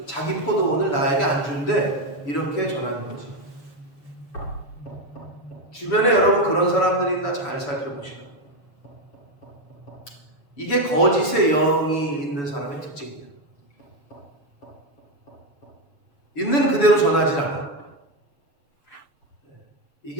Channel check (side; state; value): right; late; 7.0 ms